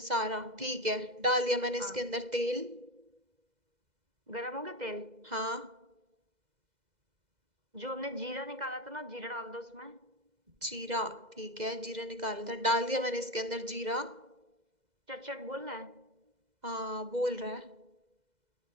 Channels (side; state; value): left; late; 2.0 ms